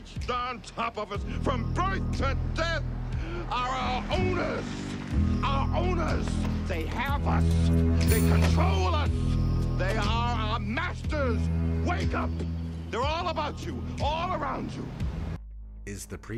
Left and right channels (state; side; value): identical; both; correlation 1.00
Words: on top of us from birth to death, are our owners. Our owners, they have us, they control us, they are our masters. Wake up, they're all about you, all around you. Is the